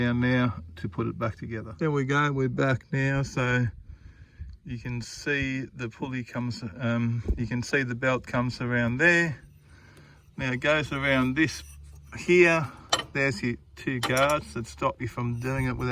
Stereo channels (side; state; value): both; identical; correlation 1.00